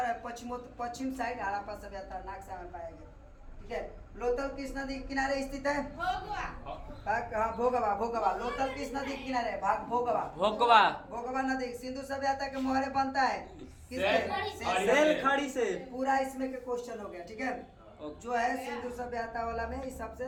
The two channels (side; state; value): both; identical; correlation 1.00